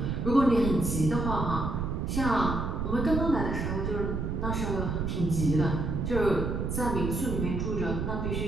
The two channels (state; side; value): noise; right; rumble, 1 dB below the sound